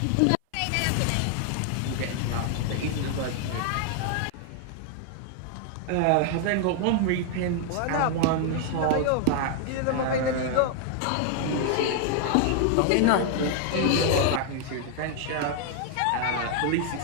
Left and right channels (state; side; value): different; both; correlation 0.00